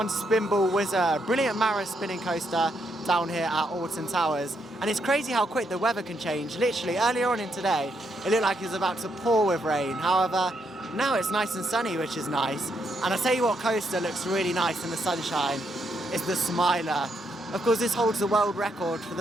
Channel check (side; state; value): both; normal; correlation 0.77